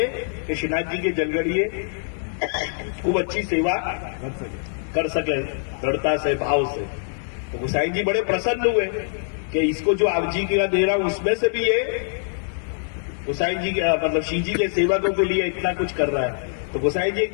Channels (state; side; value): silent; right; 60 dB below the other